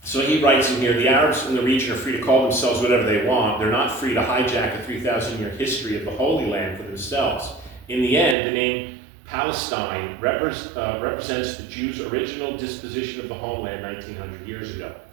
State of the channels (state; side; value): drops out; left; at 8.3 s